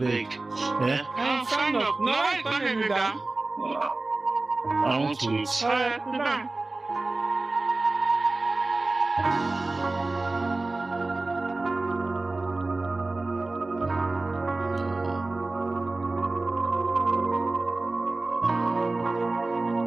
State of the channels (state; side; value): quieter; left; 3.2 dB